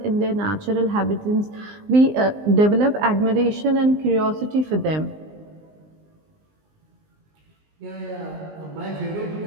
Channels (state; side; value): late; left; 19 ms